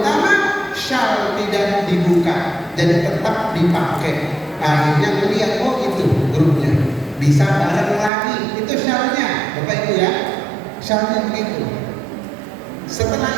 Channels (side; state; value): left; drops out; at 8.1 s